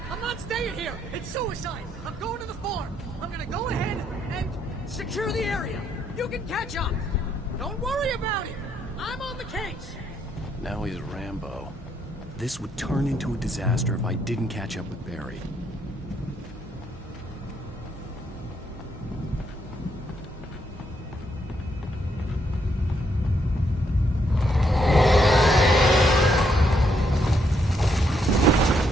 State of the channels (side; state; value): both; normal; correlation 0.75